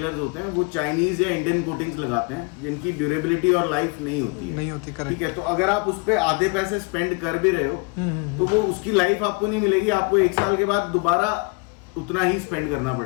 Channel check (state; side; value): quieter; right; 31.3 dB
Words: होते हैं वो चाइनीज या इंडियन कोटिंग्स लगाते हैं जिनकी ड्यूरेबिलिटी और लाइफ नहीं होती है। ठीक है। तो अगर आप उस पर आधे पैसे स्पेंड कर भी रहे हो तो वो उसकी लाइफ आपको नहीं मिलेगी, आपको 1 साल के बाद दोबारा उतना ही स्पेंड करना